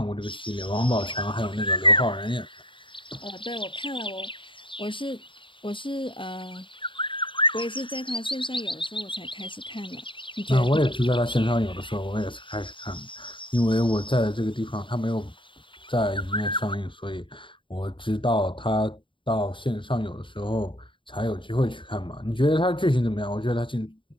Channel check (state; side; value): late; right; 0.24 ms